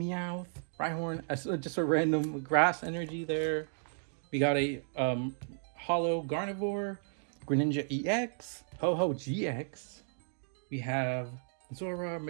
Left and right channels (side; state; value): left; silent; digital silence